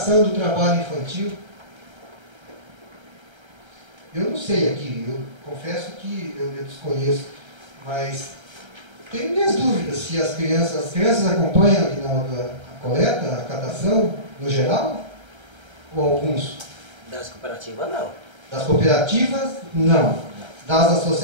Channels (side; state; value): left; late; 1.3 ms